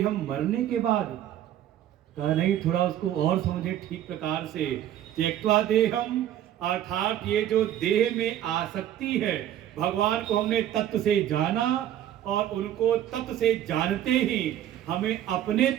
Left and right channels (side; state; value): left; quieter; 11.6 dB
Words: मरने के बाद कहा नहीं, थोड़ा उसको और समझे ठीक प्रकार से। त्यक्त्वा देहम अर्थात ये जो देह में आसक्ति है, भगवान को हमने तत्व से जाना और उनको तत्व से जानते ही हमें अपने